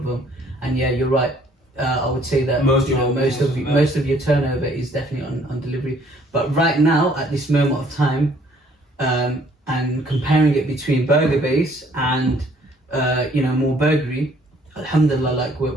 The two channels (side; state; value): both; normal; correlation 0.61